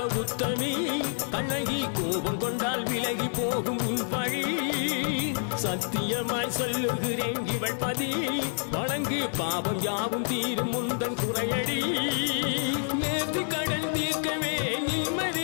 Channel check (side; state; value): right; silent; 56 dB below the other